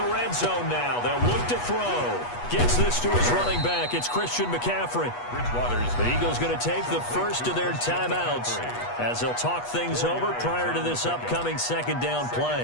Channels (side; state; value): right; late; 8.3 ms